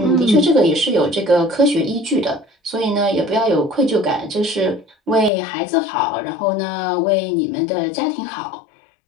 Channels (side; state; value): right; drops out; at 5.3 s